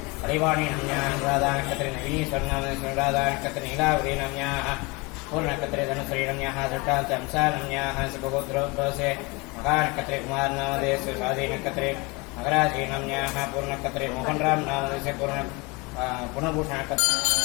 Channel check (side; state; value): right; quieter; 26.7 dB